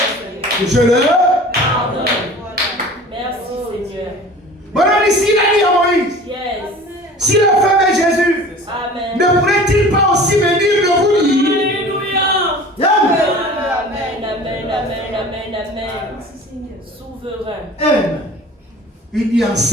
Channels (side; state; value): both; normal; correlation 0.42